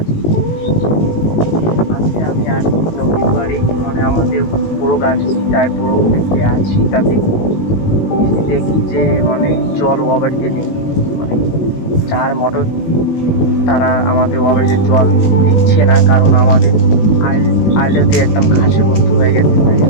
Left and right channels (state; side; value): late; right; 19 ms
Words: আজকে আমি আর নদীর পাড়ে, মানে আমাদের বড় গাছ সীতায় বড় গাছ সীতাতে এসে দেখি যে মানে জল ও বাড়িতে নেই। মানে যার মোটর তারা আমাদের ও বাড়িতে জল দিচ্ছে না, কারণ আমাদের আইলতে একদম ঘাসে ভর্তি হয়ে গেছে। তাই